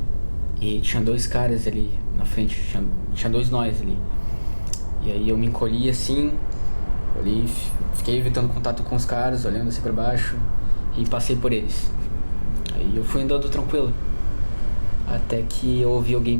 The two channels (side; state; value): both; inverted; correlation -1.00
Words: E tinha dois caras ali na frente, tinha dois nós ali. E aí eu me encolhi assim, olhei, fiquei evitando contato com os caras, olhando assim pra baixo, e passei por eles. Aí eu fui andando tranquilo, até que eu ouvi alguém